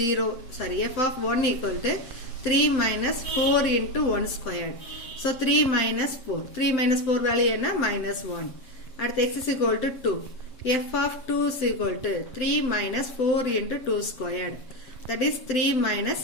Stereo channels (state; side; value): late; right; 7.8 ms